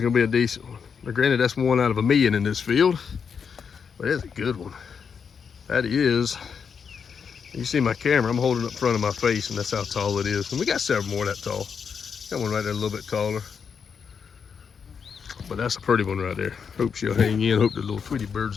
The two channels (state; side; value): quieter; right; 6.5 dB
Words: be a decent one. Now granted, that's 1 out of 1,000,000 in this field, but it's a good one. That is. You see my camera, I'm holding it up in front of my face, and that's how tall it is. And we got several more that tall. Got one right there a little bit taller. But that's a pretty one right there. Hope she'll hang in. Hope the little Tweety birds